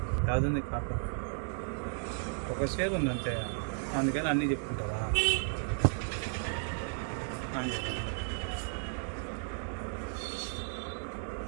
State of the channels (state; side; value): silent; left; 55 dB below the other